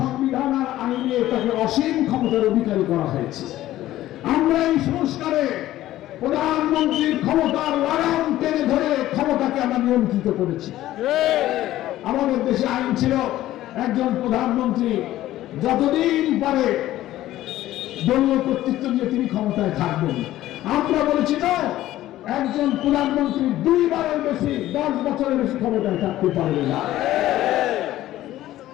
আর আইনে তাকে অসীম ক্ষমতার অধিকারী করা হয়েছে। আমরা এই সংস্কারে প্রধানমন্ত্রীর ক্ষমতার লাগাম টেনে ধরে ক্ষমতাকে আমরা নিয়ন্ত্রিত করেছি। আমাদের দেশে আইন ছিল একজন প্রধানমন্ত্রী যতদিন পারে দলীয় কর্তৃত্ব দিয়ে তিনি ক্ষমতায় থাকবেন। আমরা বলেছি না, একজন প্রধানমন্ত্রী 2 বারের বেশি 10 বছরের বেশি ক্ষমতায় থাকতে পারবে না।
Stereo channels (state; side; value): quieter; right; 14.5 dB